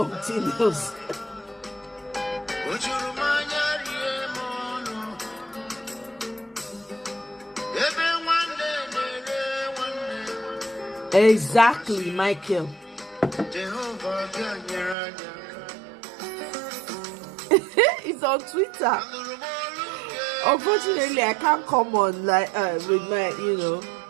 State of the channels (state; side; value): drops out; left; at 15.0 s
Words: else. Exactly, Michael. It's on Twitter. Unfortunately, I can't come on like with my, you know.